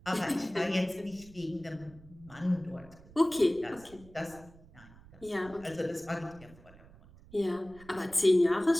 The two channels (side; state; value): right; noise; rumble, 22 dB below the sound